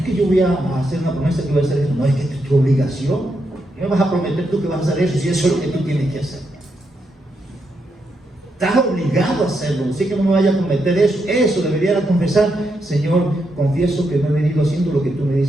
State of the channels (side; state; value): both; normal; correlation 0.82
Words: que yo voy a hacer una promesa que voy a hacer eso, no, es que es tu obligación. ¿Qué me vas a prometer tú que vas a hacer eso si eso es lo que tú tienes que hacer? Estás obligado a hacerlo, así que no me vaya a cometer eso. Eso debería confesar: Señor, confieso que no he venido haciendo lo que tú me